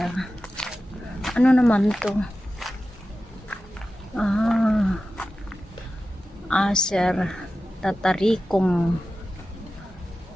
Ano naman to? Acer tataricum.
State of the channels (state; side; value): normal; both; correlation 0.94